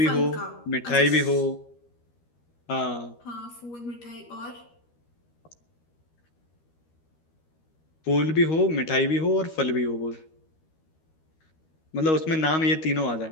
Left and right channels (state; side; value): late; right; 13 ms